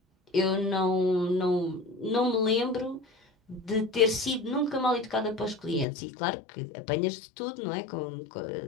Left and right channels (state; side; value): drops out; right; at 5.9 s